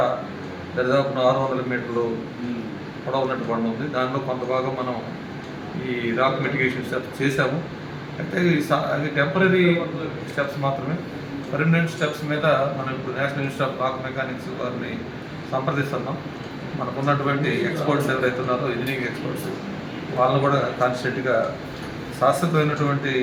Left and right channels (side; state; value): both; identical; correlation 1.00